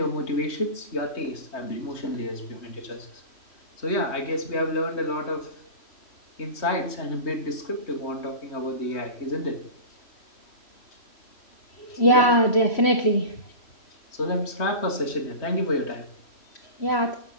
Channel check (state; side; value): late; right; 3.1 ms